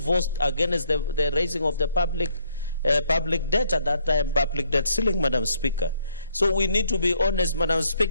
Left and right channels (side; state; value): both; inverted; correlation -0.69